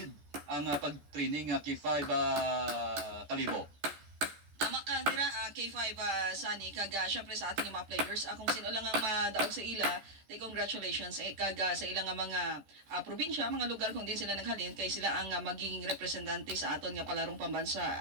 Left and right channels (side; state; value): left; late; 14 ms